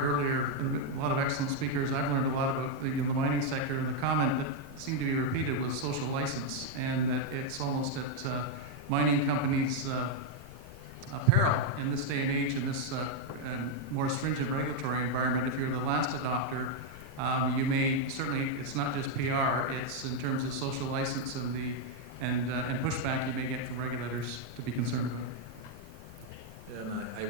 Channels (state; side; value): noise; left; rumble, 21 dB below the sound